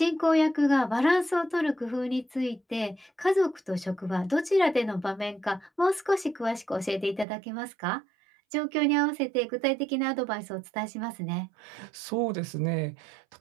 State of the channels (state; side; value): drops out; left; at 7.2 s